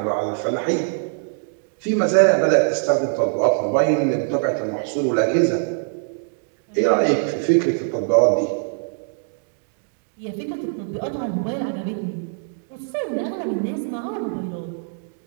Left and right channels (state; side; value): silent; left; digital silence